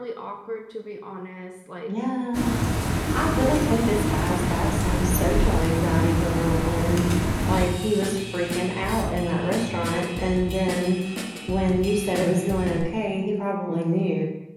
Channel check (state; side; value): identical; both; correlation 1.00